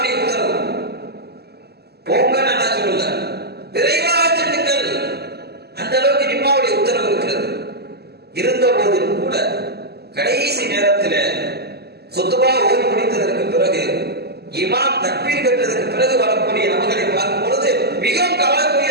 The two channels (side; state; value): left; late; 0.47 ms